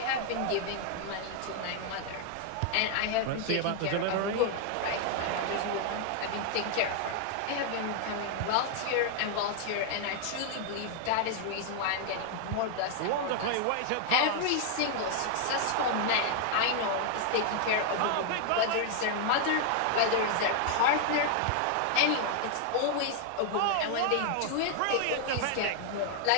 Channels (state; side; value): different; both; correlation 0.00